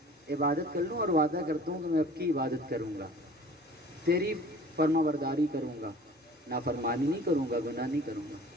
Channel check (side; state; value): both; normal; correlation 0.46